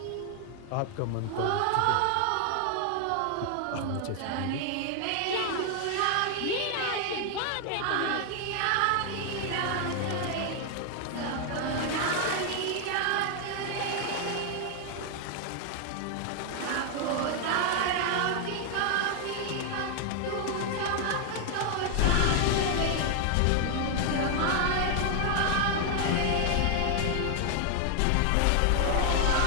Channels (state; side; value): different; both; correlation 0.00